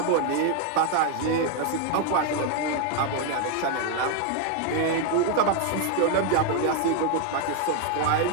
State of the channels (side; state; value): both; different; correlation 0.01